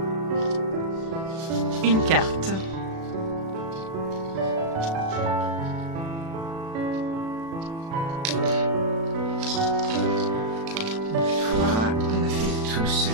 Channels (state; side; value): late; left; 36 ms